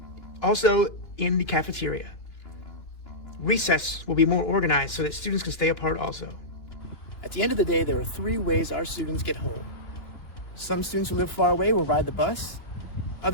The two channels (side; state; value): right; late; 2.9 ms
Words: also in the cafeteria. Recess will be more organized so that students can stay apart also. At the end of the day, there are 3 ways our students get home. Some students who live far away will ride the bus.